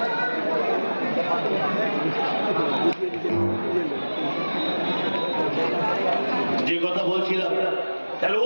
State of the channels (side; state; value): both; inverted; correlation -1.00